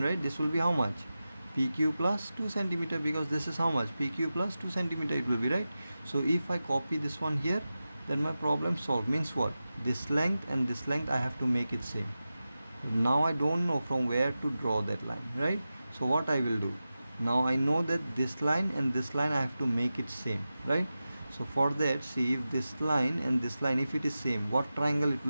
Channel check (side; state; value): both; inverted; correlation -0.94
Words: right? This will be how much? PQ plus 2 centimeter, because this is how much? PQ plus 2 centimeter it will be, right? So if I copy this one here, then my problem solved. Means what? This length and this length I have to make it same. Now I don't know from where to draw that line, right? So what I will do? Now I know that this line and this line I have to make it same, right? So for that, see, if this line and this line, if it is same, what triangle it